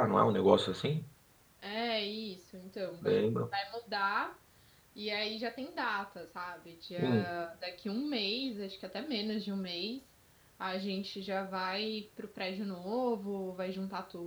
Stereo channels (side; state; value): both; identical; correlation 1.00